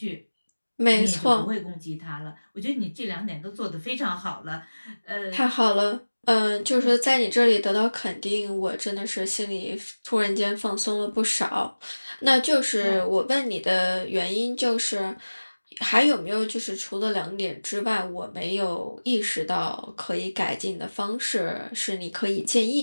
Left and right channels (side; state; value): both; inverted; correlation -1.00